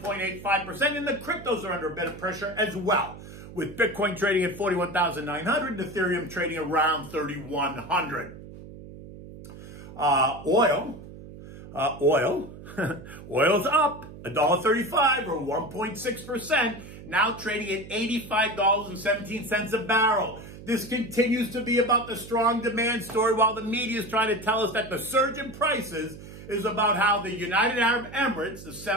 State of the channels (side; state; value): right; noise; hum, 15 dB below the sound